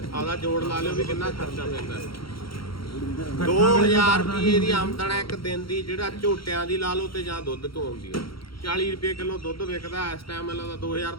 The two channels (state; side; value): late; right; 0.74 ms